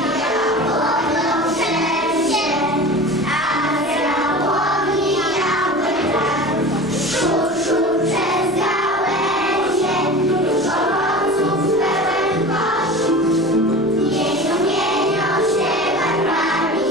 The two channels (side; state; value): left; noise; rumble, 28 dB below the sound